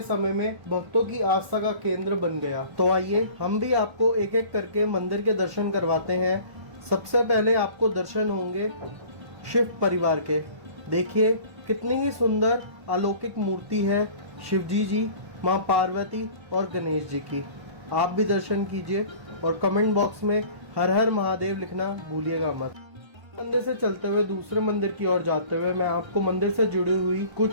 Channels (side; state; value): left; late; 1.4 ms